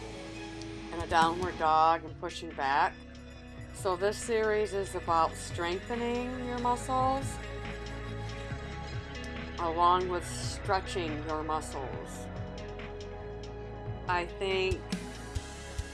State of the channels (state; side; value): identical; both; correlation 1.00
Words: in a downward dog and pushing back. So this series is about strengthening your muscles along with stretching your muscles. I think